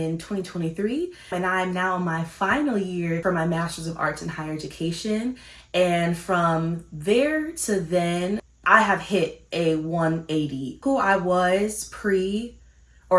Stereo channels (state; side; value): identical; both; correlation 1.00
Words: 2023, and I'm now in my final year for my master's of arts in higher education. And from there to then, I have hit a 180. Who I was pre-graduate